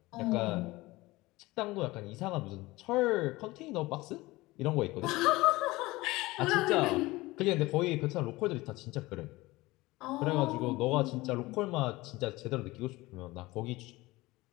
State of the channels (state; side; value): quieter; right; 20.4 dB